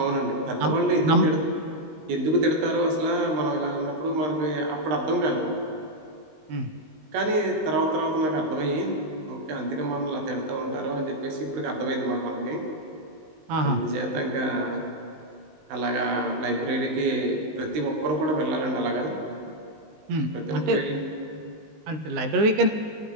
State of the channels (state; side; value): late; left; 19 ms